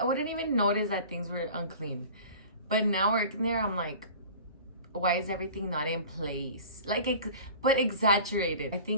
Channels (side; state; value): both; inverted; correlation -0.41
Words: wouldn't even notice that things were unclean. But now working there, I'm like, why is everything not in place? But exaggerated. I